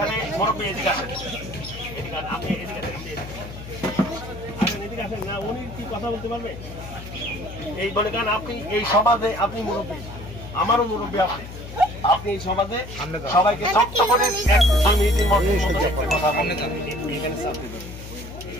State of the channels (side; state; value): left; noise; hum, 12 dB below the sound